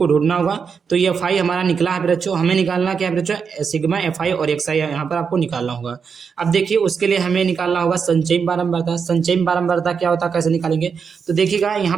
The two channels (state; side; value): quieter; left; 6.1 dB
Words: ढूंढना होगा। तो ये एफ आई हमारा निकला है बच्चों, हमें निकालना क्या है बच्चों? सिग्मा एफ आई और एक्स आई यहाँ पर आपको निकालना होगा। अब देखिए उसके लिए हमें निकालना होगा संचयी बारंबारता। संचयी बारंबारता क्या होता है, कैसे निकालेंगे? तो देखिएगा यहाँ